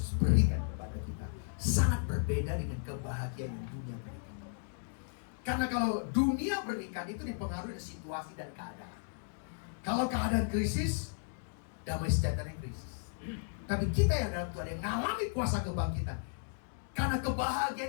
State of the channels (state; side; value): silent; right; digital silence